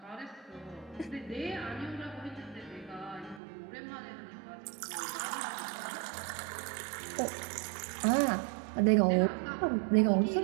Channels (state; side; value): drops out; left; at 3.4 s